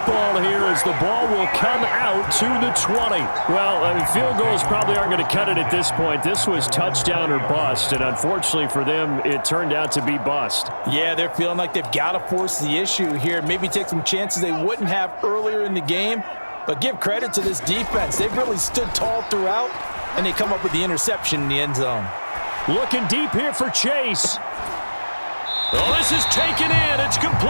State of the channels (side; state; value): both; inverted; correlation -1.00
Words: here as the ball will come out to the 20. Well, I mean, field goals probably aren't going to cut it at this point. This was touchdown or bust, and unfortunately for them, it turned out to be bust. Yeah, they're feeling like they've got to force the issue here. Maybe take some chances they wouldn't have earlier in the game. But give credit to this defense. They've really stood tall throughout, and they come up with the interception in the end zone. Looking deep here for Chase. Oh, this is taken in. It's